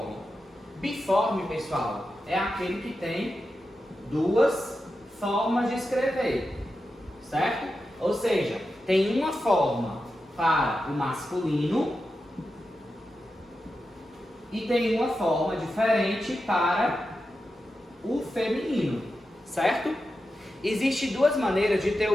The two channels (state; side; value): normal; both; correlation 0.90